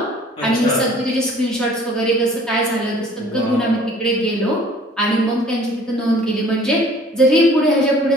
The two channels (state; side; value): normal; both; correlation 0.53